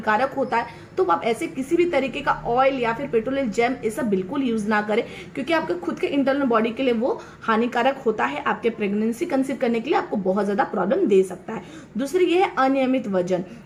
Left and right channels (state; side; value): identical; both; correlation 1.00